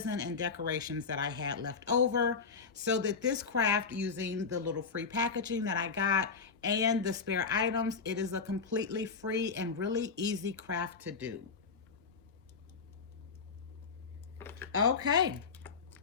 and decorations that I had left over, so that this craft, using the little free packaging that I got and the spare items, it is a completely free and really easy craft to do. Okay.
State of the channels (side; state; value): right; quieter; 5.1 dB